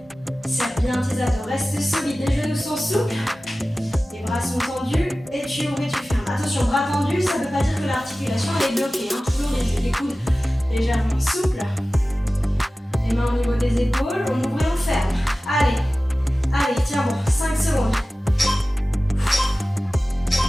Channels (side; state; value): both; normal; correlation 0.96